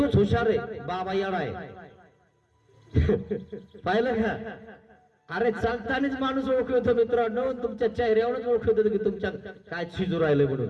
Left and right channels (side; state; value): both; identical; correlation 1.00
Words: हुशार आहे, बाबा येडा आहे. पाहिलं का? अरे चालतानाच माणूस ओळखतो मित्रांनो, तुमच्या चेहऱ्यावरच ओळखतो की तुमच्या काय शिजू राहिले